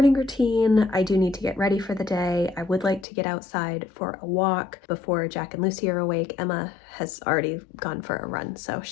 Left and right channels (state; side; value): drops out; right; at 3.1 s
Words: routine. I do need to get ready for the day. I would like to get outside for a walk before Jack and Lucy are awake. Emma has already gone for a run, so